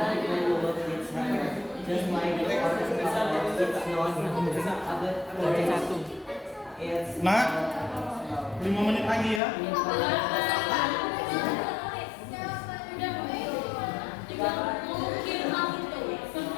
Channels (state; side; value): drops out; right; at 9.4 s